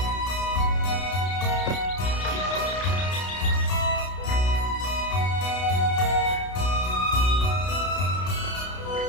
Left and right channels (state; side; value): late; right; 32 ms